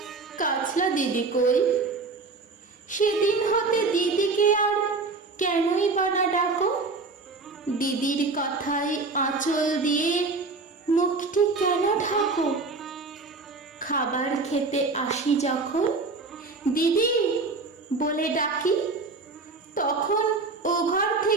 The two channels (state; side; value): quieter; left; 3.9 dB